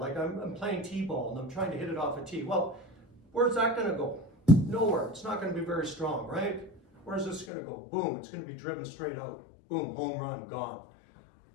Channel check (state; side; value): drops out; right; at 7.5 s